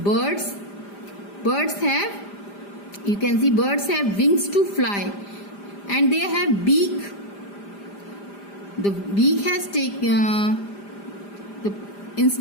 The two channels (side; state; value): right; late; 5.0 ms